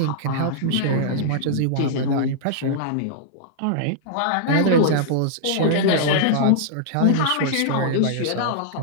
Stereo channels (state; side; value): different; both; correlation -0.02